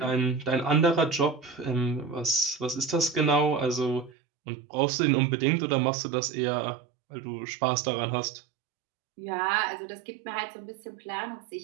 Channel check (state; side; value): drops out; left; at 4.1 s